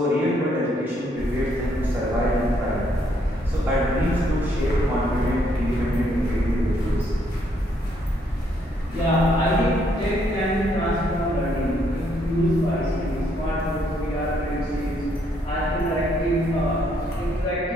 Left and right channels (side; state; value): both; normal; correlation 0.71